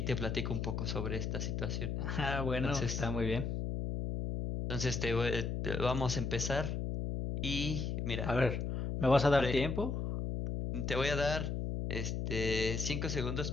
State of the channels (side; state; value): left; noise; hum, 2 dB below the sound